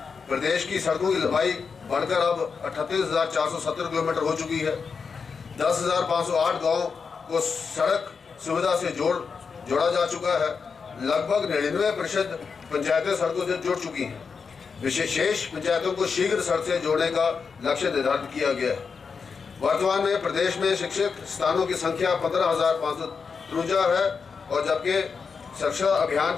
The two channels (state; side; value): quieter; right; 5.5 dB